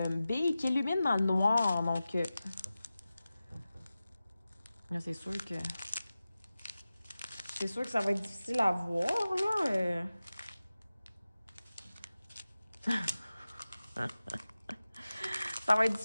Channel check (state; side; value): inverted; both; correlation -0.95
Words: billes qui illuminent dans le noir. Donc... là, c'est sûr que ça va être difficile à voir, là. Ça va être